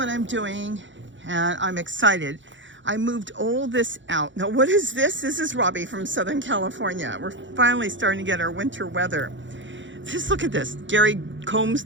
I'm doing, and I'm excited. I moved all this out. Now, what is this? This is Robbie from Southern California. We're finally starting to get our winter weather. Just look at this. Gary combs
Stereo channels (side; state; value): left; late; 0.54 ms